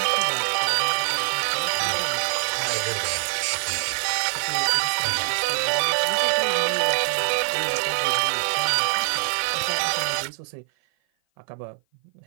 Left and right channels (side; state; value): left; silent; 55 dB below the other